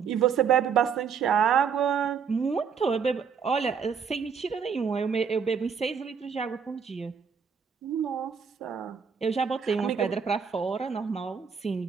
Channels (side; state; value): left; quieter; 6.5 dB